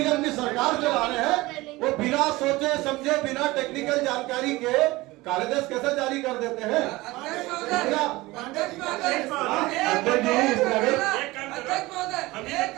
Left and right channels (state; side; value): quieter; left; 20.3 dB